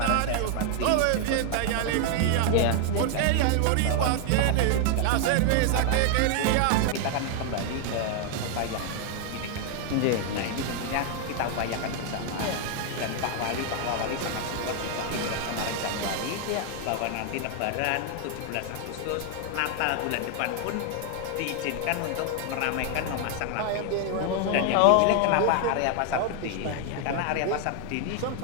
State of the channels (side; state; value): both; different; correlation 0.00